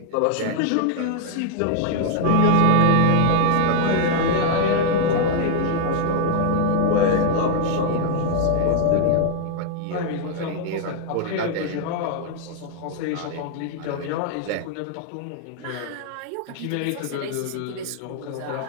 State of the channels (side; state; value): both; different; correlation 0.00